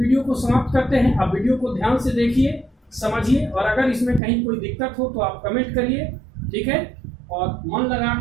को समाप्त करते हैं। आप वीडियो को ध्यान से देखिए, समझिए, और अगर इसमें कहीं कोई दिक्कत हो तो आप कमेंट करिए, ठीक है, और मन लगा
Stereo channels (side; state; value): left; drops out; at 4.2 s